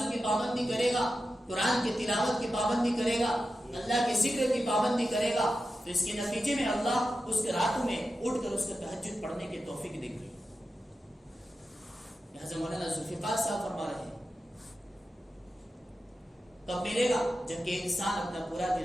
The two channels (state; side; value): normal; both; correlation 0.91